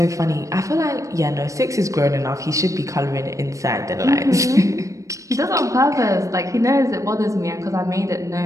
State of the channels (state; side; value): late; left; 0.16 ms